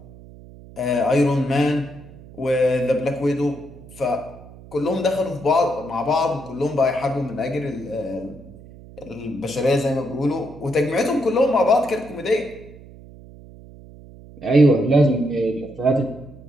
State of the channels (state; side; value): noise; right; hum, 19 dB below the sound